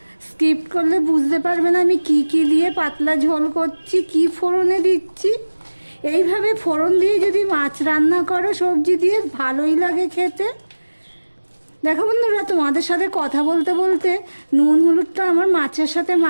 স্কিপ্ট করলে বুঝতে পারবে না আমি কি কি দিয়ে পাতলা ঝোল করছি, কি ফোড়নে দিচ্ছি। এইভাবে ফোড়ন দিয়ে যদি মাছ রান্না করো সবজি দিয়ে, ভালোই লাগে খেতে। দেখো বন্ধুরা, তোমাদের সাথে কথা বলতে বলতে নুন হলুদটা আমার মাছের সাথে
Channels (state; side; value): inverted; both; correlation -1.00